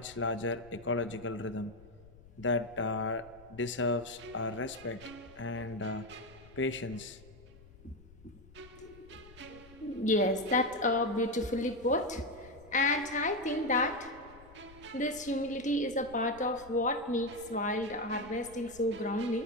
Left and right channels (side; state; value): left; noise; rumble, 21 dB below the sound